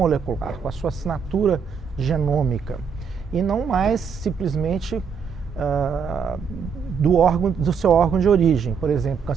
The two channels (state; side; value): quieter; left; 6.3 dB